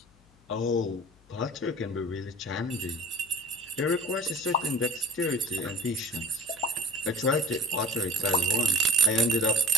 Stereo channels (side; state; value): left; noise; hum, 30 dB below the sound